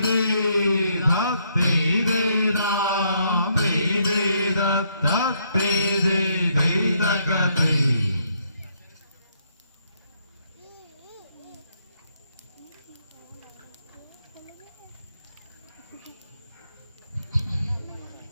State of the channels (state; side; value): inverted; both; correlation -0.72